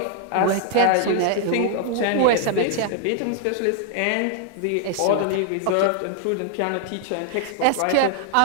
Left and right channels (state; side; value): different; both; correlation 0.00